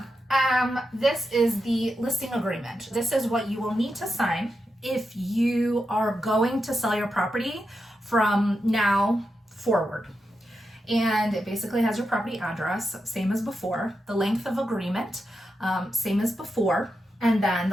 this is the listing agreement. This is what you will need to sign if you are going to sell your property from now forward. And it basically has your property address, same as before, the length of agreement, same as before, and then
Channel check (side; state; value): both; normal; correlation 0.87